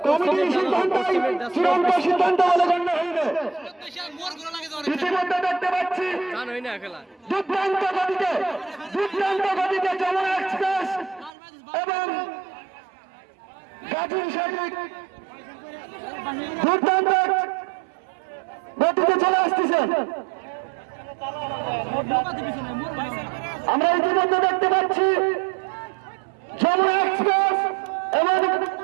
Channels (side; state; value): left; drops out; at 11.3 s